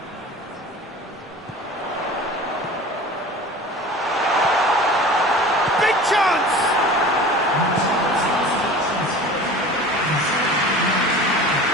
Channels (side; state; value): both; normal; correlation 0.39